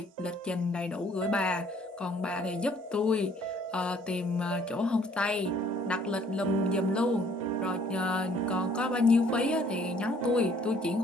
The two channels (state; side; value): normal; both; correlation 0.60